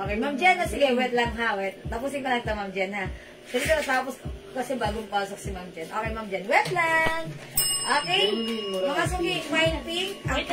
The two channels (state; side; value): identical; both; correlation 1.00